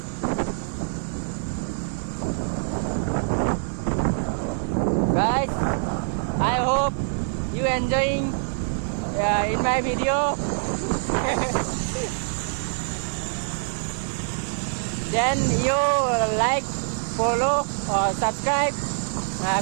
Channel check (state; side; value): silent; left; digital silence